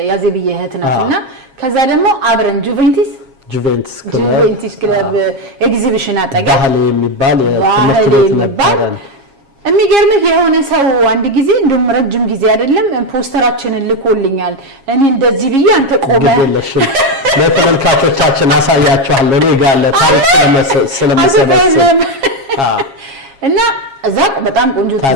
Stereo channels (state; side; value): late; left; 7.3 ms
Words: ያዜብዬ እህት ናትና ከዛ ደግሞ አብረን ጁቬንቱስ ክለብ ኤግዚቢሽን አጠገብ ባህል የሚባል የትምህርት ቤት ነበር። የሚገርምህ የሆነ ሰው አንድ ጊዜ እንደውም ረጅም ጊዜ አይደለም ፖስተራችንን ልኮልኛል። እኔ እንደዚህ ብዬ አንተ ቆመህ ለተመልካቾቻችን አሳያቸዋለሁ። እኔ ጋር ለታሪክ ስለመሰበሰብ እና እዛ በጣም ቆንጆ